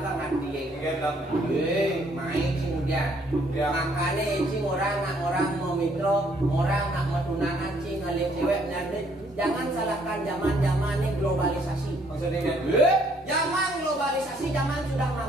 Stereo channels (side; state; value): both; normal; correlation 0.66